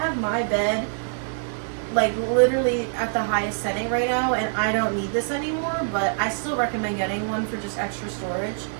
my bed like literally at the highest setting right now, and I don't need this anymore. But I still recommend getting one for just extra storage.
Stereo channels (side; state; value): left; silent; digital silence